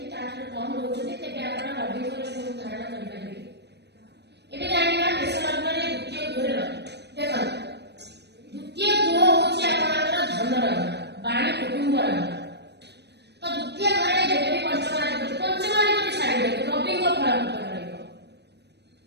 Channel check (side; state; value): left; late; 0.49 ms